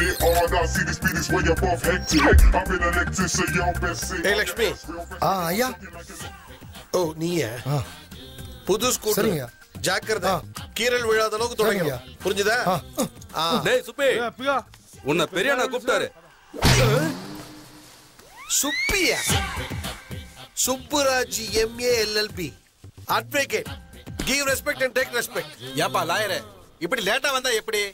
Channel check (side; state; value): both; identical; correlation 1.00